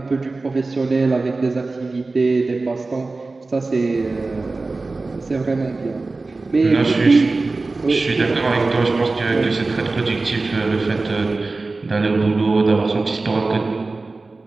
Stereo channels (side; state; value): left; quieter; 3.5 dB